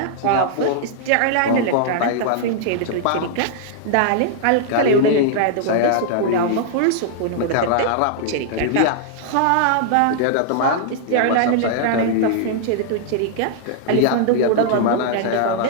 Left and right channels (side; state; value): both; different; correlation -0.01